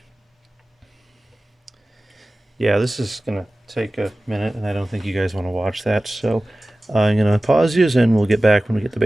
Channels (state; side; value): normal; both; correlation 0.97